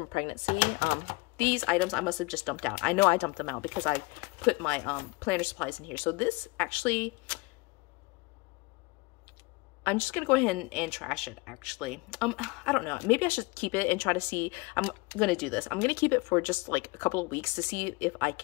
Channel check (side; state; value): right; quieter; 25.4 dB